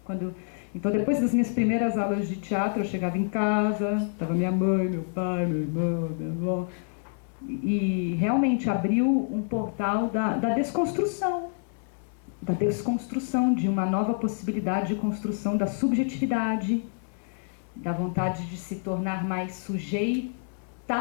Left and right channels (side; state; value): right; silent; digital silence